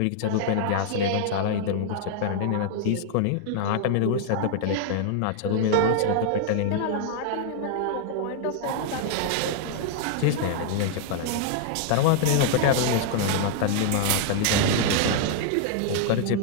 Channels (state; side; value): different; both; correlation -0.01